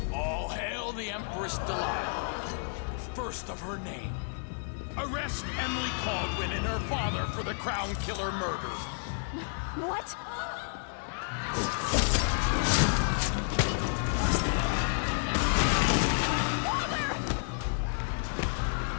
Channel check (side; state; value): right; silent; digital silence